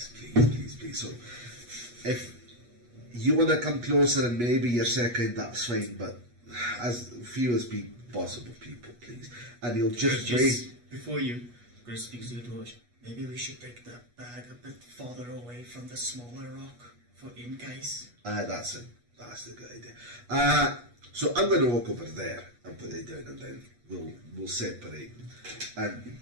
please, please, please. So, if you want to come closer and maybe you're second, that's fine, but as few as possible people, please. And you'll just wait. Before you, Chris speaks to the dwarves. Maybe we should take that bag a bit farther away from the smaller rock for in case. That's a good idea. So I'm going to walk over there and put it down, and then we'll separate. And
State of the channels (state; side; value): late; left; 8.3 ms